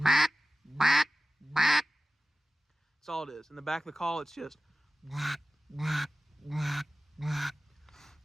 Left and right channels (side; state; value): both; normal; correlation 0.95